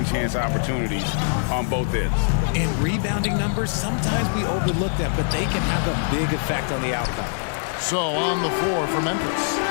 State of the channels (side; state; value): right; silent; digital silence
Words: chance opportunities on both ends. In rebounding numbers, sometimes we overlook them, but they can have a big effect on the outcome. So on the floor for Memphis.